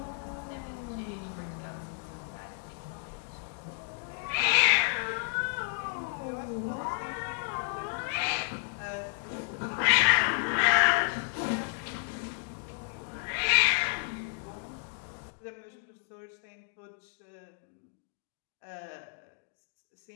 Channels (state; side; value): silent; right; 56 dB below the other